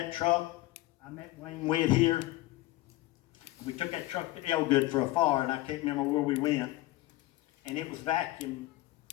truck, I met Wayne Witt here. We took that truck to Elgood for a fire, and I can't remember where we went. And it was vacuum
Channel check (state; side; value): quieter; right; 17.9 dB